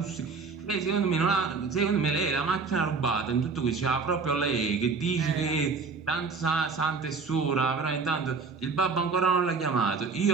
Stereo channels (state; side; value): quieter; left; 4.7 dB